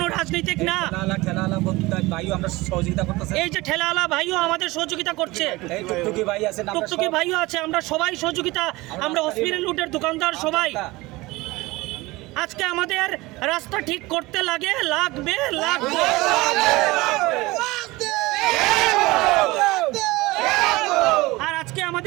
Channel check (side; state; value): left; quieter; 21.0 dB